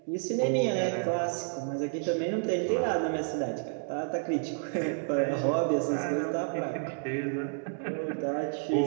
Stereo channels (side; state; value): left; silent; 58 dB below the other